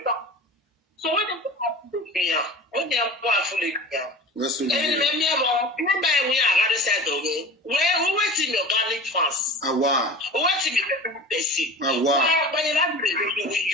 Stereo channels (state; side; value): normal; both; correlation 0.36